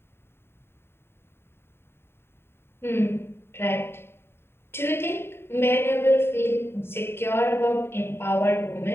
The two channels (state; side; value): late; right; 0.11 ms